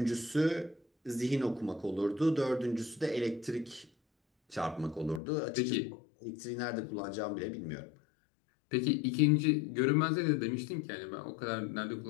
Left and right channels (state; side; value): drops out; right; at 5.2 s